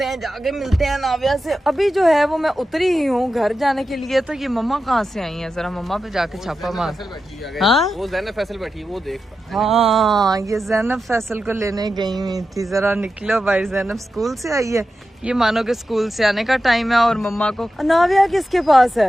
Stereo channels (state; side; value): normal; both; correlation 0.90